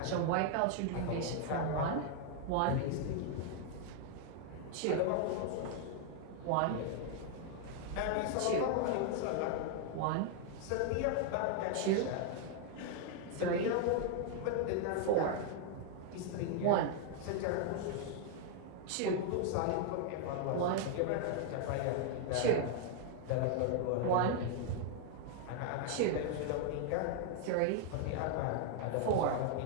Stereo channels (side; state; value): both; different; correlation 0.00